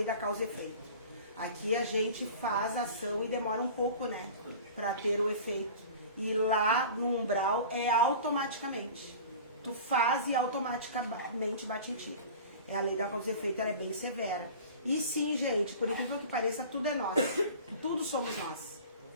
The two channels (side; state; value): both; inverted; correlation -0.39